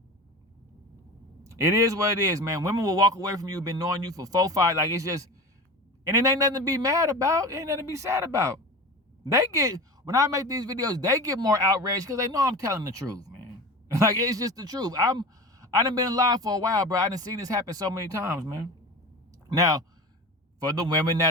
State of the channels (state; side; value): normal; both; correlation 0.31